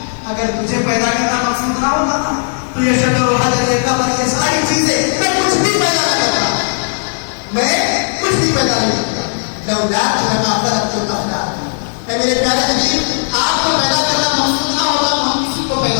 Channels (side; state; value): right; silent; digital silence